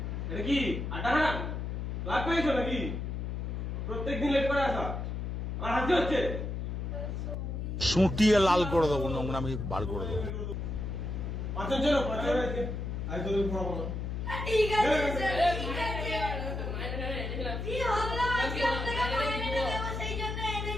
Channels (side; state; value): left; noise; hum, 3 dB below the sound